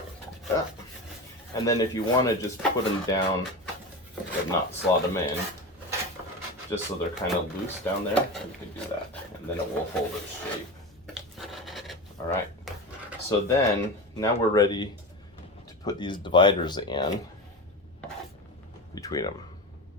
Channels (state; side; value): normal; both; correlation 0.25